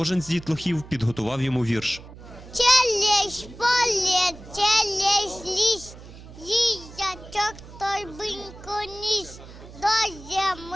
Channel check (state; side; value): noise; right; hum, 17 dB below the sound